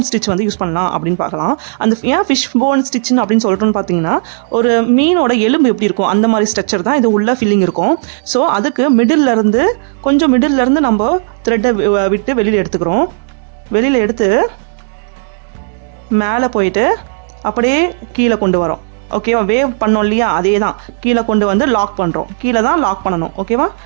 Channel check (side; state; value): left; silent; 71 dB below the other